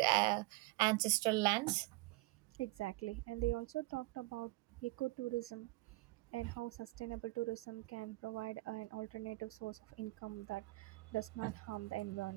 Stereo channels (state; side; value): quieter; left; 22.6 dB